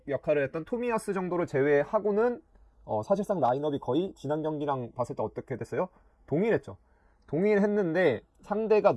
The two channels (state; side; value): identical; both; correlation 1.00